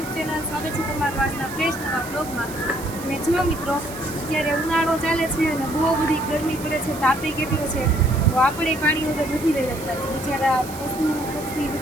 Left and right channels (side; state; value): right; noise; hiss, 14 dB below the sound